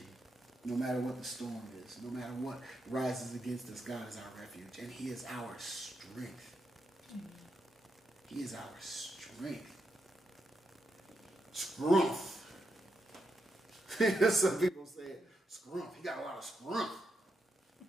No matter what the storm is, no matter what rises against us, God is our refuge. And He is our strength. He is our strength. Scrumph. Some people say scrumph. He got a lot of scrumph.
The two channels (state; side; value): normal; both; correlation 0.83